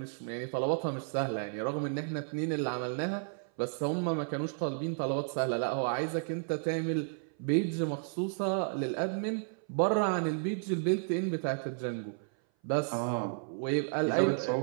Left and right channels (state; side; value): silent; left; 56 dB below the other